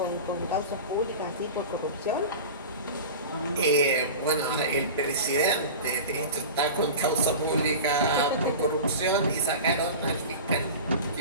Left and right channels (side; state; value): both; inverted; correlation -0.32